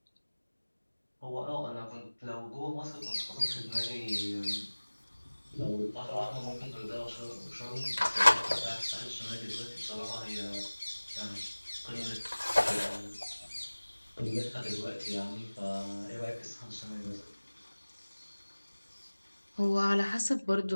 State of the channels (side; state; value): both; inverted; correlation -1.00